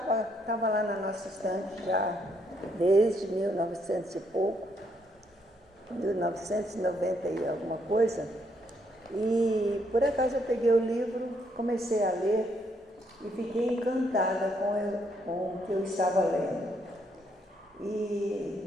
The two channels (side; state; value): both; normal; correlation 0.73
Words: lá na nossa estante já desde 1900 e pouco, 1990 e alguma coisa, e por acaso eu peguei o livro, comecei a ler e fiquei encantada com o que eu estava lendo.